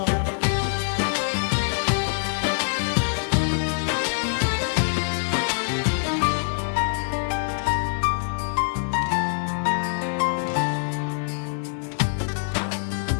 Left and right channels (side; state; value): right; silent; 62 dB below the other